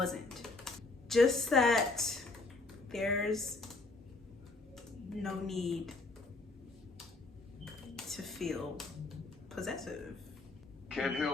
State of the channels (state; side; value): quieter; right; 3.4 dB